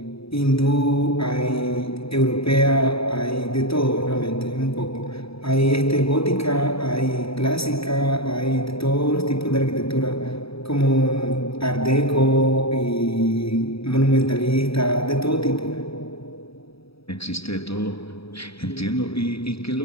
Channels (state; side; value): late; right; 0.77 ms